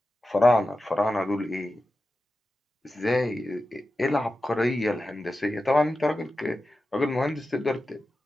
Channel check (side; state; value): both; normal; correlation 0.93